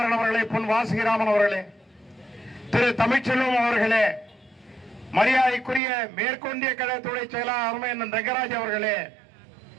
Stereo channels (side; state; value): left; drops out; at 5.8 s